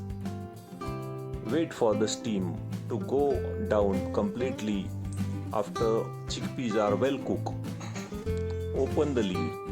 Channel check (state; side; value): identical; both; correlation 1.00